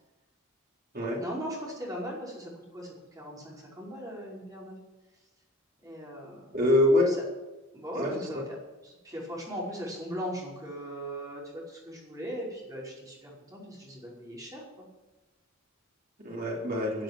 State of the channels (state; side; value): normal; both; correlation 0.44